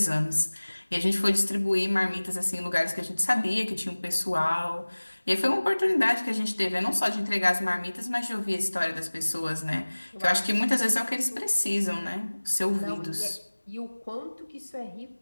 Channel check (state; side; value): inverted; both; correlation -1.00